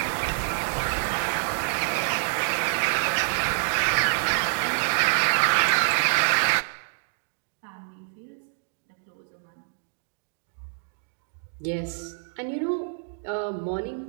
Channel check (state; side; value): silent; left; digital silence